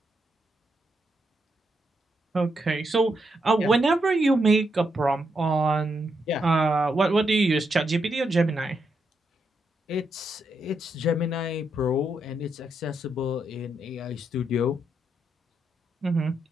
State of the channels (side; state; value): both; normal; correlation 0.81